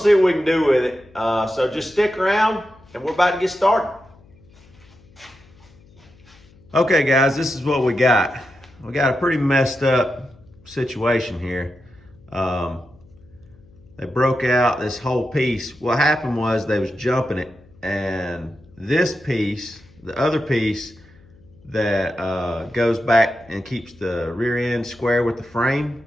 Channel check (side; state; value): left; noise; hum, 27 dB below the sound